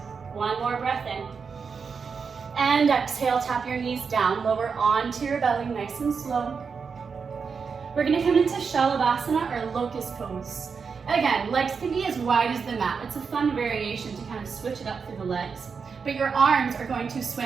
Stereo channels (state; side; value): quieter; left; 5.6 dB